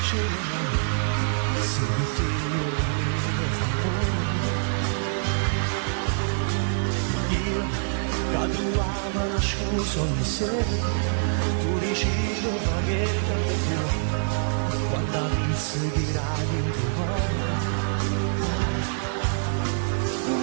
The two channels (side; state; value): left; silent; 61 dB below the other